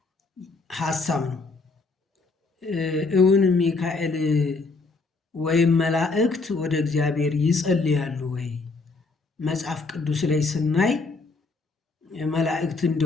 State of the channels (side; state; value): right; quieter; 3.9 dB